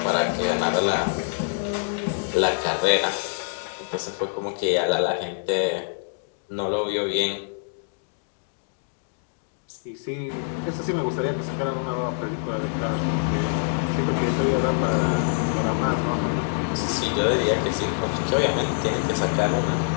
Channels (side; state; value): right; silent; digital silence